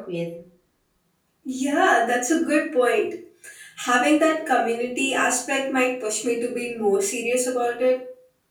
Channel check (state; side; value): identical; both; correlation 1.00